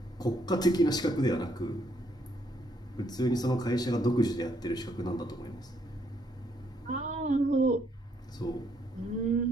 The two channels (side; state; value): both; normal; correlation 0.71